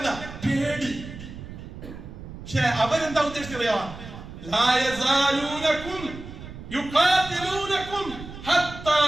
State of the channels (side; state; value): right; noise; rumble, 13 dB below the sound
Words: പേടി. പക്ഷെ അവരെന്താ ഉദ്ദേശിച്ചറിയാ? ലാ യസാലൂനകും യുഖാതിലൂനകും ഹത്താ